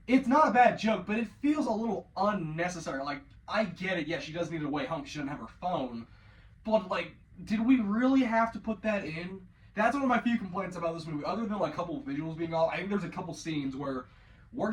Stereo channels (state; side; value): identical; both; correlation 1.00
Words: it's not a bad joke, but it feels a little unnecessary. Like, I get it, yeah, she does need a way home because she doesn't have her phone. But, like, did we really have to put that in? That's one of my few complaints about this movie. Other than, like, a couple of visuals being off, I think there's a couple scenes where we're